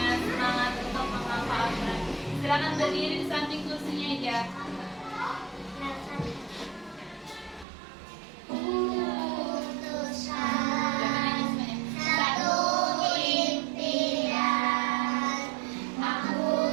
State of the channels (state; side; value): drops out; left; at 7.7 s